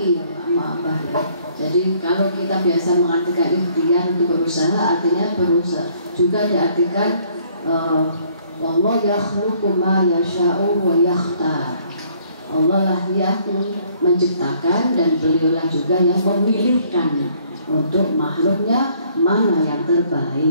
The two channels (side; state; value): both; inverted; correlation -0.63